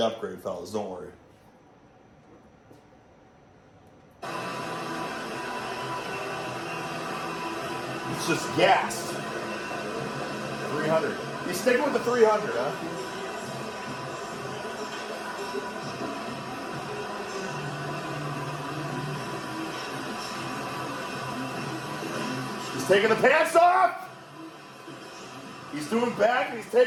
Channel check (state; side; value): identical; both; correlation 1.00